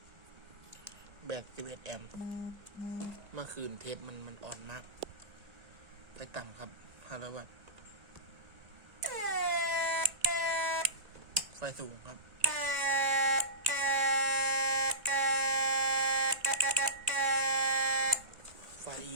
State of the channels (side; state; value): left; late; 1.9 ms